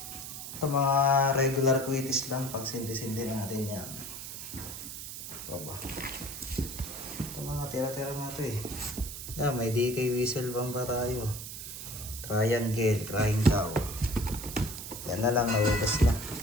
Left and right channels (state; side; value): noise; right; hiss, 9 dB below the sound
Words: Ito, mga regular Quitis lang, pang sindi-sindi natin yan. Saba. Ito, mga tira-tira na ito eh. May DK whistle bang ba tayo? Triangle, crying cow. Yan na lang, naugas na.